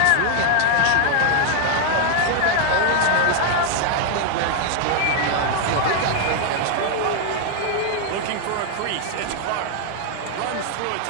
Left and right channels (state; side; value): different; both; correlation 0.00